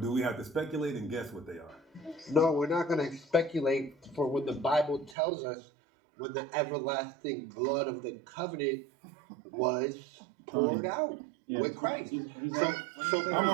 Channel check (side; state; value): left; drops out; at 5.2 s